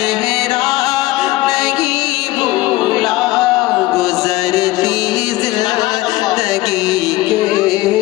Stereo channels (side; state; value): right; quieter; 18.3 dB